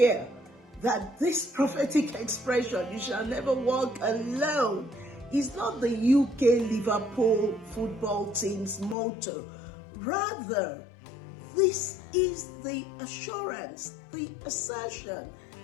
that this prophetic expression, you shall never walk alone, is not the UK Liverpool football team's motto. Rather, this is the assurance, the assertion,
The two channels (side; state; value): right; drops out; at 9.0 s